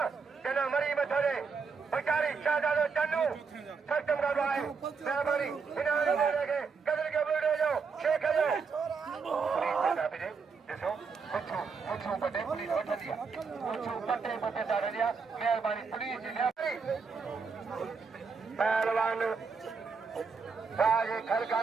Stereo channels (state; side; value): quieter; left; 5.2 dB